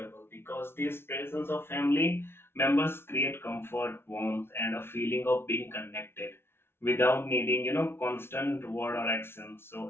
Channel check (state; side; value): late; right; 0.12 ms